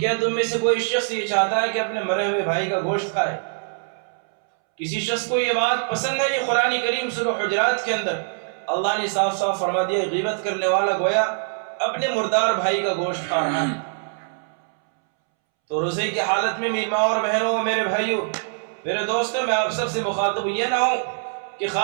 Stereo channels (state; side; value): silent; left; 63 dB below the other